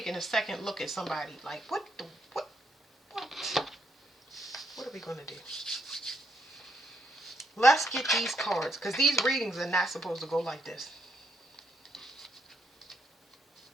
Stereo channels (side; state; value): both; normal; correlation 0.75